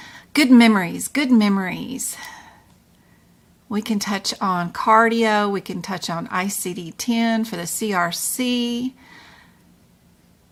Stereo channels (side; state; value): both; identical; correlation 1.00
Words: good memories. We can touch on cardio. We can touch on ICD-10 for the CRC.